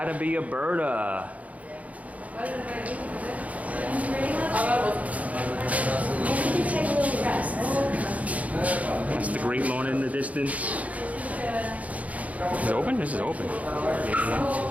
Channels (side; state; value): left; late; 0.069 ms